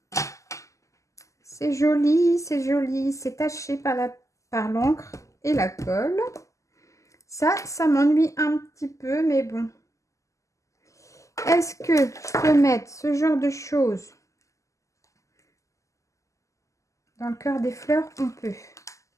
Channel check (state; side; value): late; right; 0.16 ms